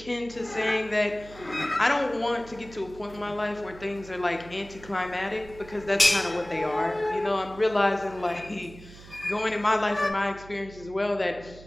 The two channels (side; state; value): right; noise; hum, 18 dB below the sound